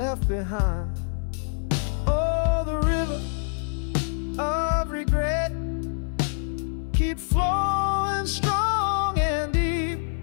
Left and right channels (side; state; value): right; silent; 61 dB below the other